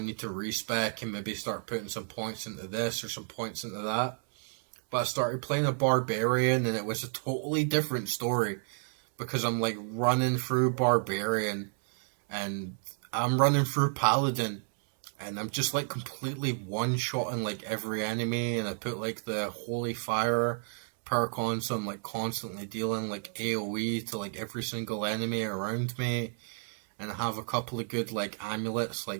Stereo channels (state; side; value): silent; left; 57 dB below the other